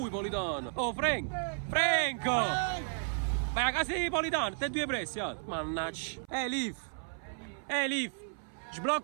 Politano. Oh, Franco! Vai a casa di Politano, te due pressi, mannaggia. Liv.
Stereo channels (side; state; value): left; silent; 56 dB below the other